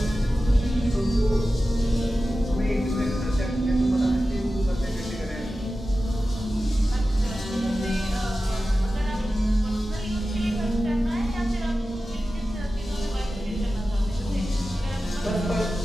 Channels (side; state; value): both; normal; correlation 0.94